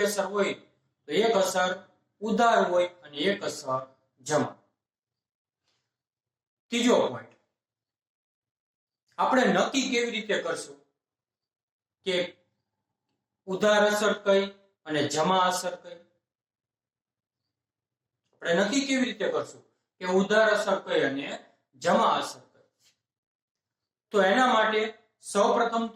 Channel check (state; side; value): identical; both; correlation 1.00